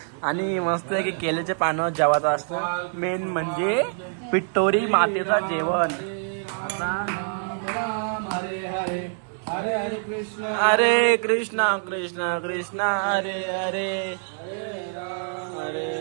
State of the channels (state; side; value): silent; left; digital silence